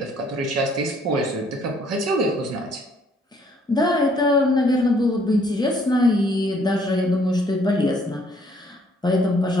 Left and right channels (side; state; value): both; normal; correlation 0.63